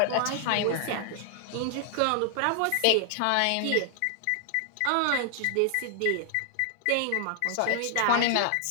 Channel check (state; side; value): different; both; correlation 0.00